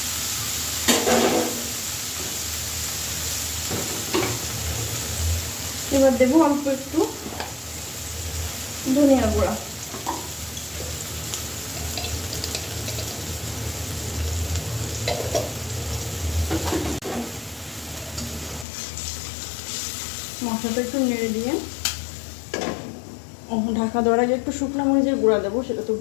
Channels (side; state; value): right; drops out; at 18.7 s